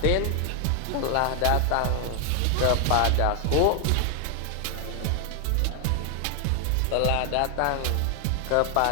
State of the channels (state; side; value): different; both; correlation 0.00